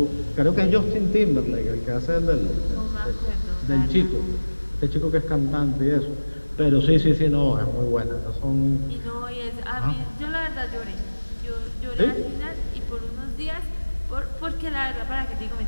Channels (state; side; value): inverted; both; correlation -1.00